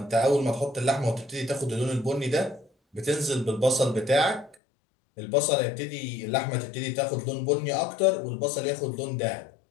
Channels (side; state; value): right; drops out; at 4.5 s